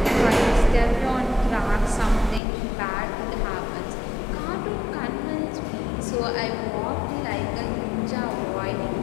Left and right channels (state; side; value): drops out; right; at 2.4 s